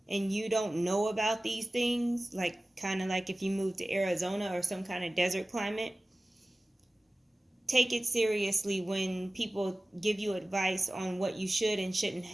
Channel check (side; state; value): both; normal; correlation 0.97